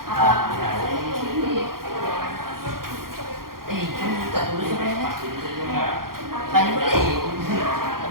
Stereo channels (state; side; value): late; left; 0.92 ms